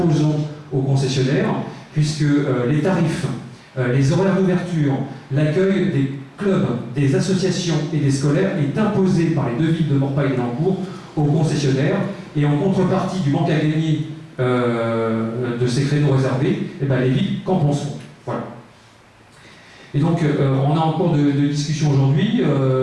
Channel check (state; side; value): identical; both; correlation 1.00